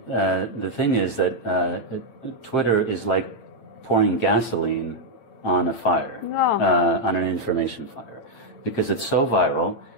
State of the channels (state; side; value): late; right; 8.9 ms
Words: the thing is that Twitter is like pouring gasoline on a fire, on an information fire, because it's so viral